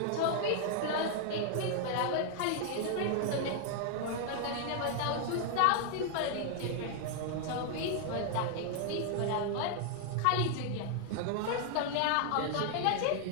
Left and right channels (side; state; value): both; different; correlation 0.00